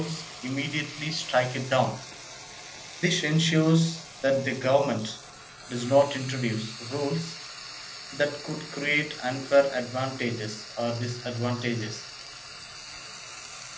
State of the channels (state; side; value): identical; both; correlation 1.00